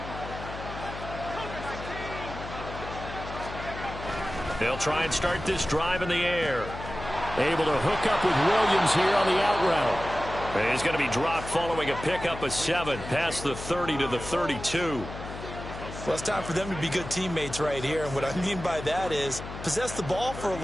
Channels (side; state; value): left; noise; hum, 10 dB below the sound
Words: They'll try and start this drive in the air. Able to hook up with Williams here on the out route. He's going to be dropped following a pickup of 7 past the 30 to the 32. Well, it's time for them to be good teammates right here. And what I mean by that is possess the ball for a